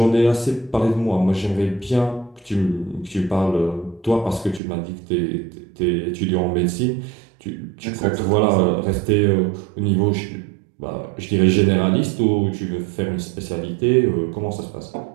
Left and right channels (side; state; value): left; drops out; at 4.6 s